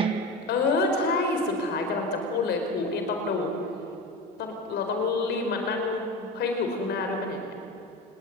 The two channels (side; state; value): both; normal; correlation 0.27